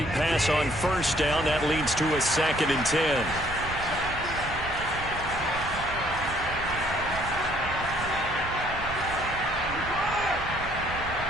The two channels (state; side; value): noise; right; rumble, 12 dB below the sound